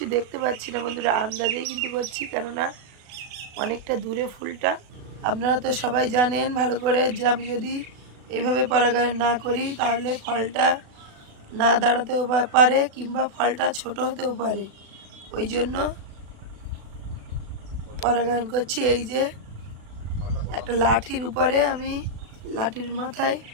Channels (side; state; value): left; late; 36 ms